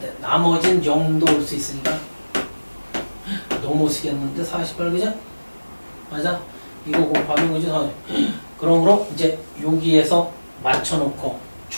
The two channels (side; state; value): both; inverted; correlation -1.00